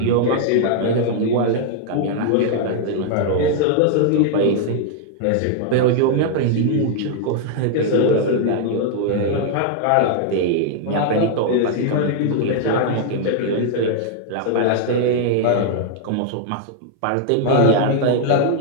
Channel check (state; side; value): different; both; correlation 0.00